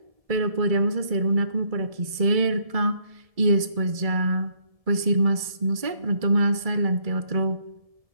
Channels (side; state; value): left; late; 1.7 ms